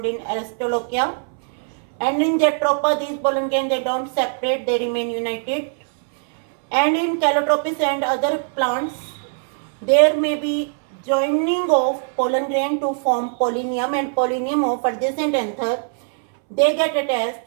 in Aristolochia. And in Jatropha, these pollen grain, they don't separate, they remain united. And in Calotropis and other plants, there may be joining of pollen grain to form pollinium, and pollinium of adjacent anther, they get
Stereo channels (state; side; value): silent; left; 64 dB below the other